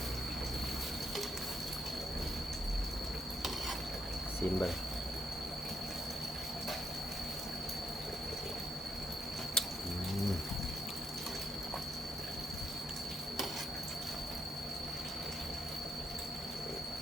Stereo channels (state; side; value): normal; both; correlation 0.78